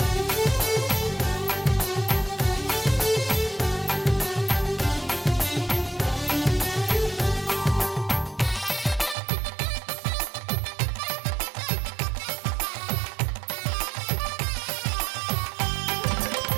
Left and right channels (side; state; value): left; drops out; at 9.2 s